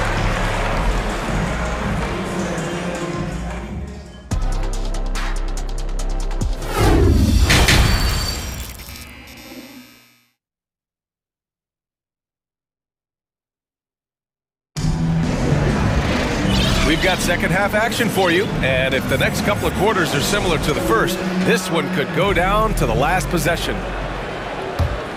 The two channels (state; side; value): identical; both; correlation 1.00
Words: We've got second half action for you, and if the next couple of quarters are similar to the first, this one could go down to the last possession.